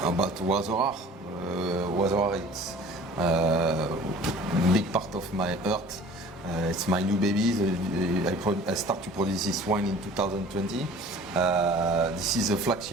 about Wazorar. Wazorar, it's a big part of my heart. It's my new baby. I start to produce this wine in 2020. This is a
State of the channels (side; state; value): both; normal; correlation 0.46